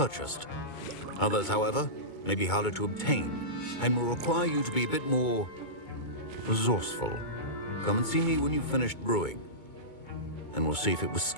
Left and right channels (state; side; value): late; right; 2.2 ms